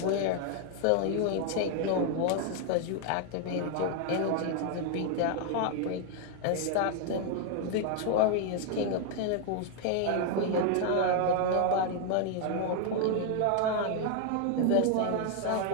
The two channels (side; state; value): both; different; correlation 0.00